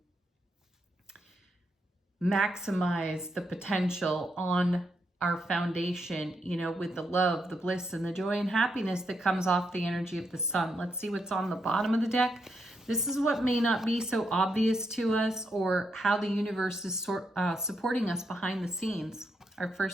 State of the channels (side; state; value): both; normal; correlation 0.80